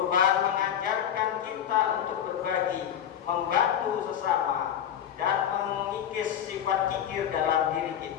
mengajarkan kita untuk berbagi, membantu sesama, dan mengikis sifat kikir dalam diri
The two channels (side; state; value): right; quieter; 9.6 dB